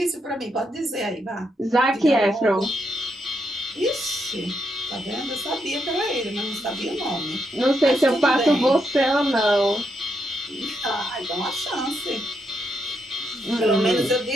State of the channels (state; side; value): normal; both; correlation 0.80